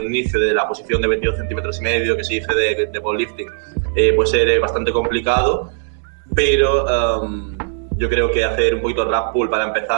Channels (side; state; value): left; silent; digital silence